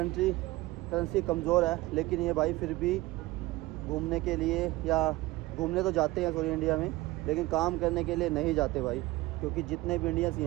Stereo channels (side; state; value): left; quieter; 19.3 dB